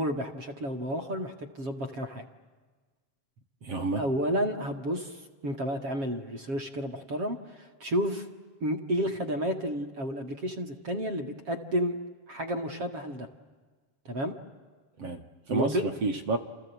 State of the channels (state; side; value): late; left; 7.4 ms